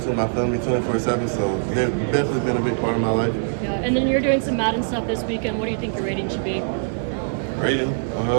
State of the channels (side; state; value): left; silent; digital silence